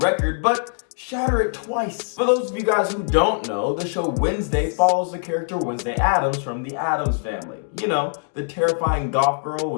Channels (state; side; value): silent; right; 64 dB below the other